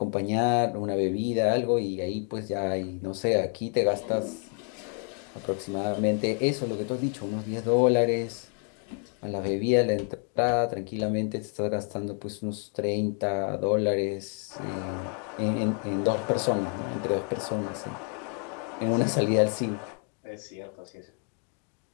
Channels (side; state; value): right; quieter; 37.3 dB